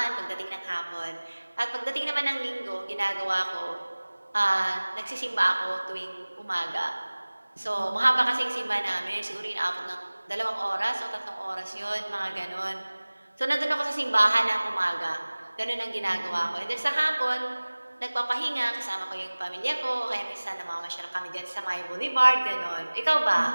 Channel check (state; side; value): inverted; both; correlation -1.00